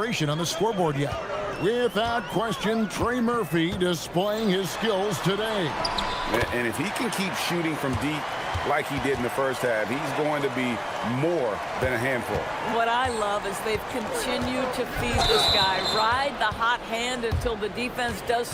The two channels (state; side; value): identical; both; correlation 1.00